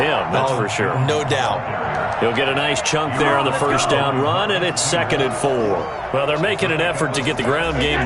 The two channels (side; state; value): both; identical; correlation 1.00